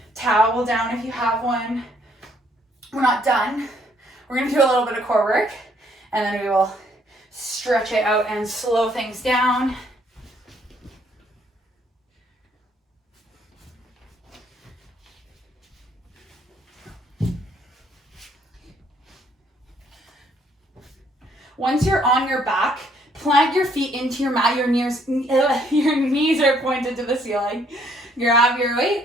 towel down if you have one. We're not done. We're gonna do a little bit of core work, and then we will stretch it out and slow things down. Once you're on your back, plant your feet into your mat. Your knees are pointed to the ceiling. Grab your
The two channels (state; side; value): normal; both; correlation 0.67